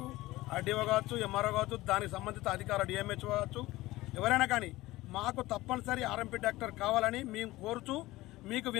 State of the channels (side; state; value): right; quieter; 18.2 dB